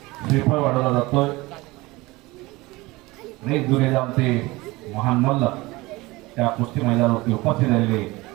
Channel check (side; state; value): left; quieter; 21.5 dB